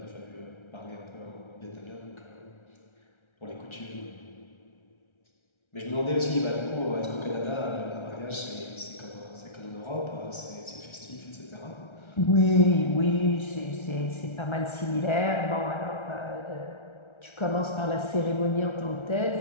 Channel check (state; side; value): late; right; 1.3 ms